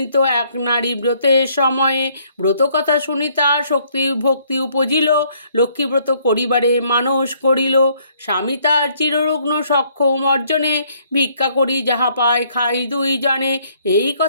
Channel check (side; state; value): both; inverted; correlation -0.66